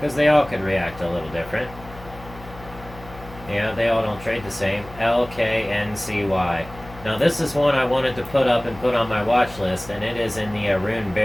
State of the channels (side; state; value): left; noise; hum, 18 dB below the sound